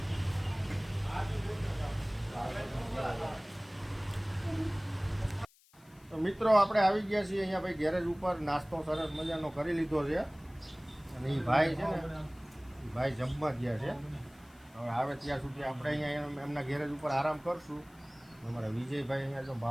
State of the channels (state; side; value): noise; left; hiss, 29 dB below the sound